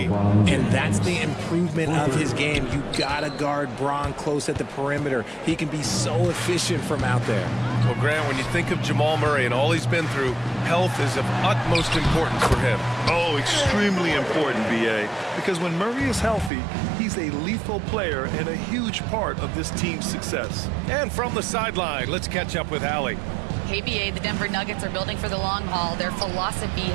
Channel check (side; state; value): left; drops out; at 16.5 s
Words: And that's the improvement of his game. You gotta guard Bron close at the perimeter. He can be so efficient from out there. Well, Grant, when you think of Jamal Murray and all he's been through, health is of utmost importance for him. Oh, extremely important, BA. Because when Murray is healthy, he's a lethal player and a huge part of this team's success. And from the sideline, let's catch up with Allie. KBA, the Denver Nuggets are building for the long haul. Their philosophy